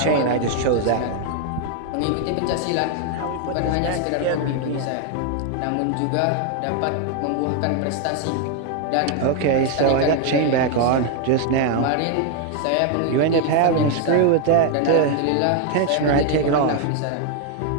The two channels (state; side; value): different; both; correlation 0.01